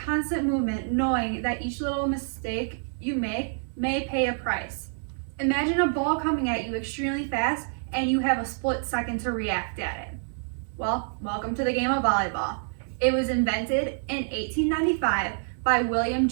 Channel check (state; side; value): silent; left; digital silence